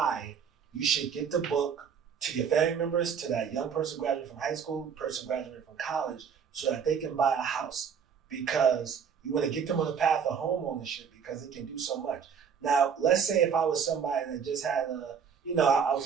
you should get the book to your family members, to that young person graduating from high school, person graduating from college, so that they can buy a house, because you want to get them on the path of home ownership because it can do so much. Now, let's say if I was somebody that just had I was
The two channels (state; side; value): quieter; left; 7.0 dB